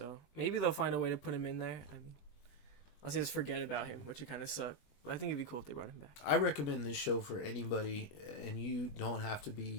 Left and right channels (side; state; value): right; late; 20 ms